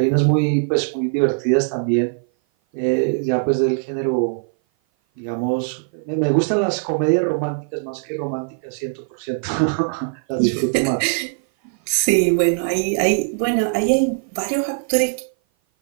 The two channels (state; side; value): silent; left; 57 dB below the other